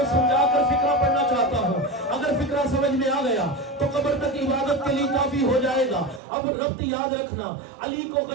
سمجھا کر فکرہ پڑھنا چاہتا ہوں. اگر فکرہ سمجھ میں آ گیا تو قبر تک عبادت کے لیے کافی ہو جائے گا. اب ربط یاد رکھنا، علی کو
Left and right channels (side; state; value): left; drops out; at 6.2 s